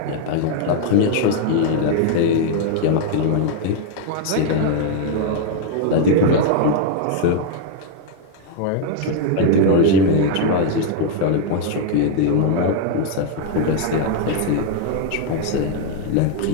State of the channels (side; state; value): both; different; correlation 0.00